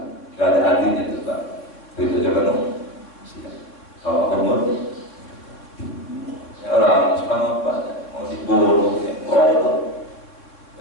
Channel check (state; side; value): late; right; 3.7 ms